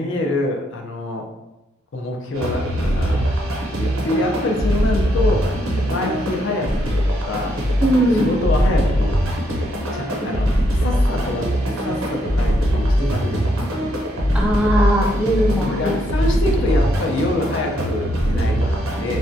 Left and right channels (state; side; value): normal; both; correlation 0.76